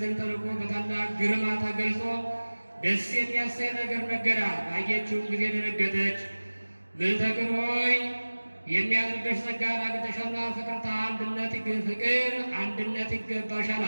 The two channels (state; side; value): inverted; both; correlation -1.00